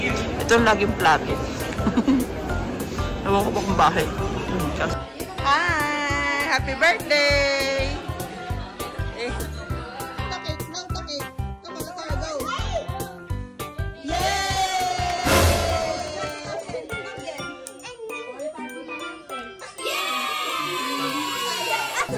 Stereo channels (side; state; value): both; identical; correlation 1.00